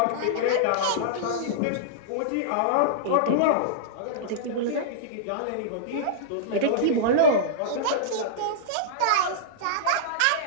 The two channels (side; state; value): both; different; correlation -0.03